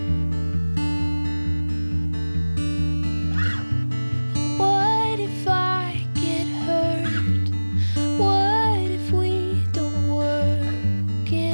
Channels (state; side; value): inverted; both; correlation -1.00